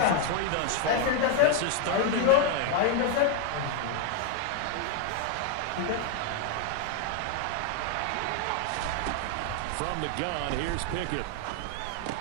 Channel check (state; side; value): different; both; correlation 0.00